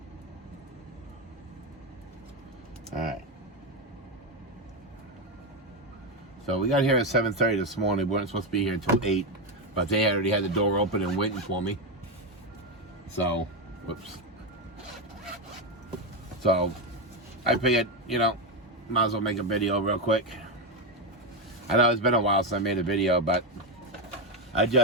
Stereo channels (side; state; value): both; normal; correlation 0.09